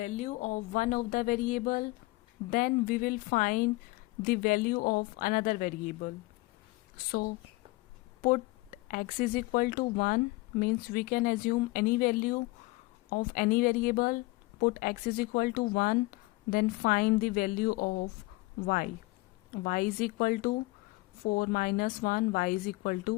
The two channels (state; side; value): quieter; right; 22.2 dB